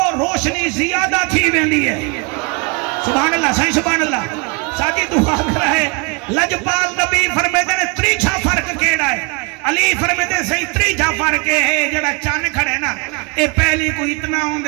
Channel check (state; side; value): quieter; left; 30.7 dB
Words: روشنی زیادہ تھی ویندی ہے سبحان اللہ صحیح سبحان اللہ ساجی دعا کر رہے لجپال نبی فرمیدن تریچھا فرق کیڑا ہے علی فرمیدن صحیح تریچھا فرق ہے جڑا چان کھڑے نا اے پہلی کو اتنا